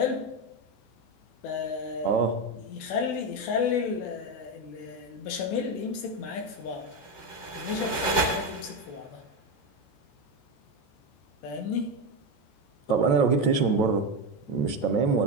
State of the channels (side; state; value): right; late; 14 ms